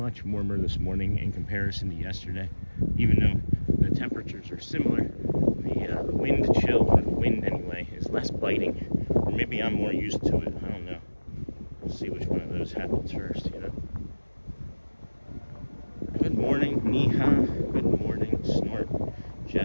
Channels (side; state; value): both; inverted; correlation -1.00